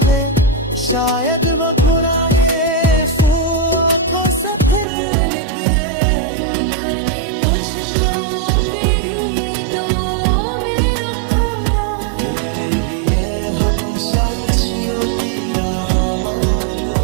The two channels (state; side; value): drops out; left; at 4.9 s